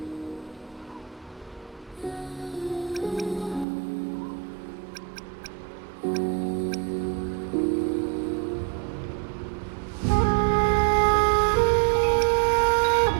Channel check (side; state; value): left; drops out; at 3.7 s